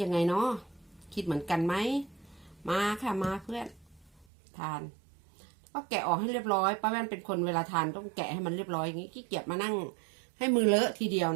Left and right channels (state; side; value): drops out; left; at 4.2 s